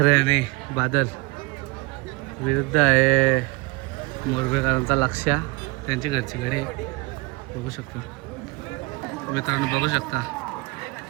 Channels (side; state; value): left; quieter; 25.0 dB